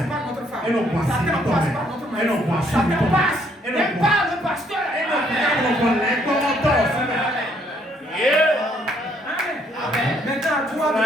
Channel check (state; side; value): normal; both; correlation 0.68